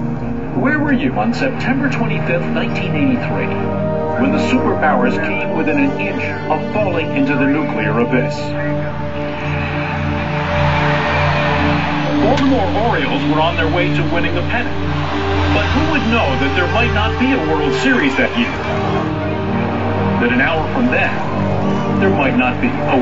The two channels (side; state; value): both; identical; correlation 1.00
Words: Where were you on September 25th, 1983, when the superpowers came within an inch of falling into the nuclear abyss? Baltimore Orioles were on their way to winning the pennant. But who would know that there might not be a World Series that year? That an hour from then, there might not be a